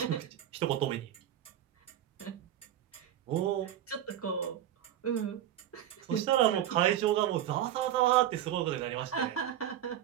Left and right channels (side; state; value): left; quieter; 11.4 dB